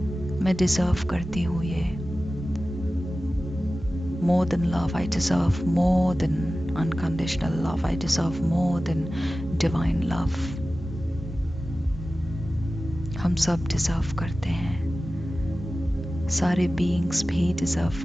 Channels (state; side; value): normal; both; correlation 0.95